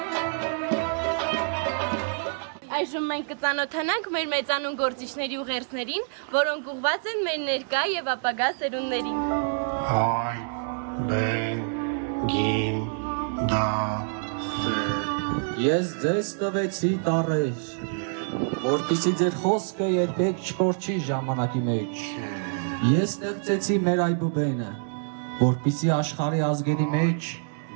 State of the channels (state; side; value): silent; left; digital silence